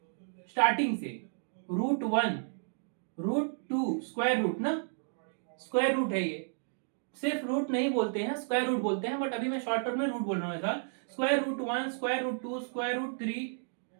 स्टार्टिंग से √1 √2 स्क्वायर रूट ना, स्क्वायर रूट है ये, सिर्फ रूट नहीं बोलते हैं, स्क्वायर रूट बोलते हैं, बट अभी मैं शॉर्टकट में रूट बोल रहा हूं ऐसा। √1 √2 √3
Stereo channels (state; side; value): silent; left; digital silence